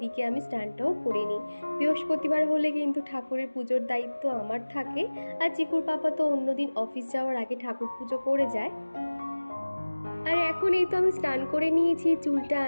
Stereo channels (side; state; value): both; inverted; correlation -1.00